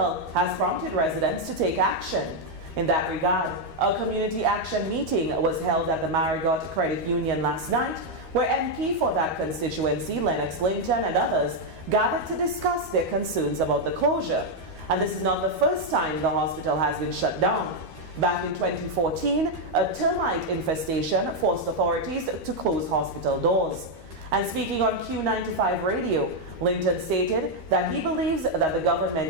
has prompted residents to take action. In that regard, a community action meeting was held at the Marigot Credit Union last night, where MP for that constituency, Linton, and others gathered to discuss their concerns about the closure. And this is not the first time the hospital has been shut down. Back in 2014, a termite infestation forced authorities to close hospital doors. And speaking on Q95 radio, Linton stated that he believes that the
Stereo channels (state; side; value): late; left; 13 ms